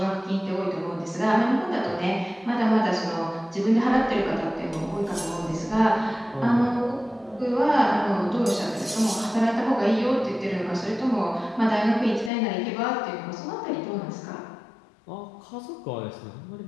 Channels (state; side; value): drops out; right; at 12.3 s